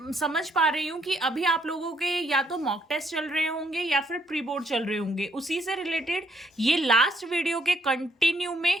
समझ पा रही हूँ कि अभी आप लोगों के या तो मॉक टेस्ट चल रहे होंगे या फिर प्री बोर्ड चल रहे होंगे। उसी से रिलेटेड ये लास्ट वीडियो के कंटिन्यू में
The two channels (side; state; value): both; normal; correlation 0.70